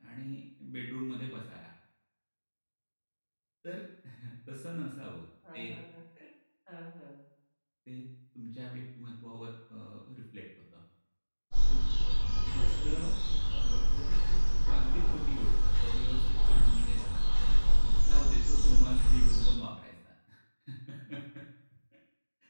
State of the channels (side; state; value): both; inverted; correlation -1.00